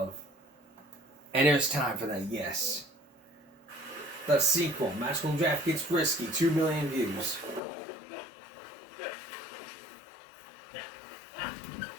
And there's time for that, yes. The sequel, Magical Draft Gets Risky, 2 million views.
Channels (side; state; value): right; drops out; at 7.6 s